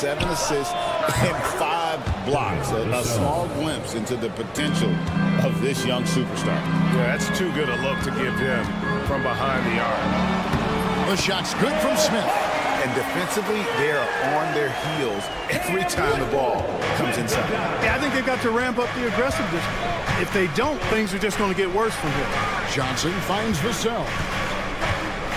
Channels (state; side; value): identical; both; correlation 1.00